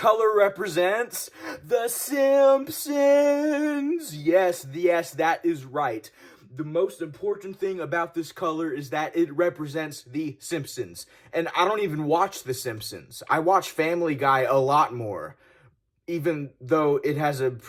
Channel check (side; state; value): both; identical; correlation 1.00